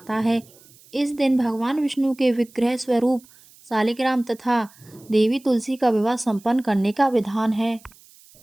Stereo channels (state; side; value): noise; right; hiss, 26 dB below the sound